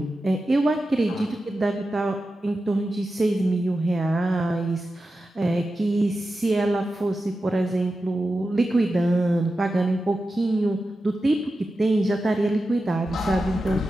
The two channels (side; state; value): both; normal; correlation 0.92